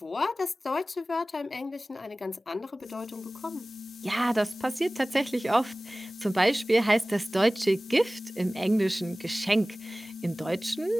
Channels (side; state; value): both; normal; correlation 0.98